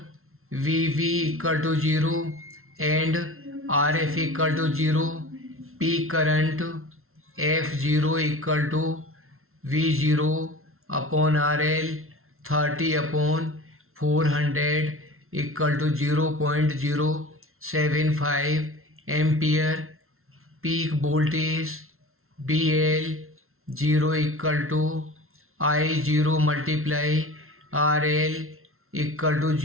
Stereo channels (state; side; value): late; left; 0.62 ms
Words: VV equal to 0 and RF equal to 0. Peak current F0 equal to V0 upon RL 30 upon 400 equal to 0.075 ampere. Peak voltage BL 0 equal to I0 multiply RL equal to